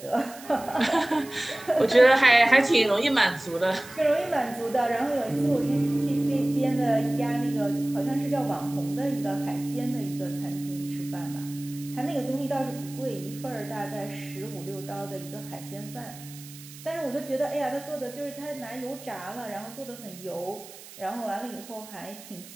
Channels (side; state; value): right; noise; hiss, 17 dB below the sound